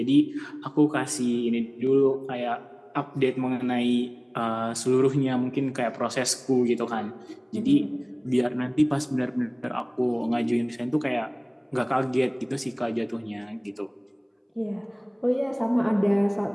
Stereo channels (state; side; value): identical; both; correlation 1.00